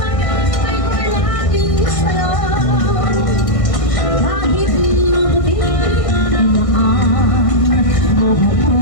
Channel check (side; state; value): right; late; 1.6 ms